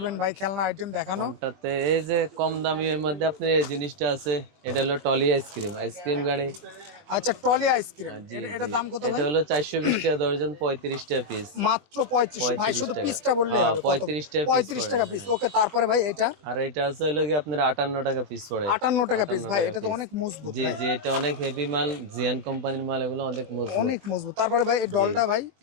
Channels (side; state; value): left; late; 20 ms